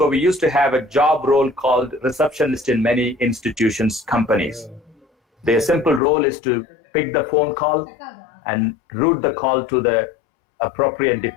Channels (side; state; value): right; drops out; at 6.0 s